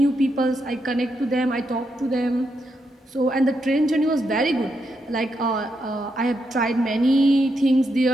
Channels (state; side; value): normal; both; correlation 0.82